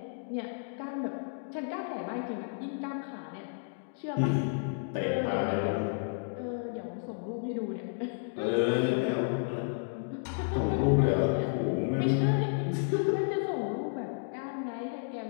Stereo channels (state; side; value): silent; right; digital silence